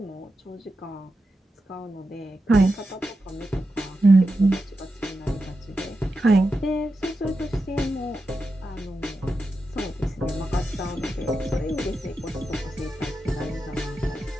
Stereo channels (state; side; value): normal; both; correlation 0.89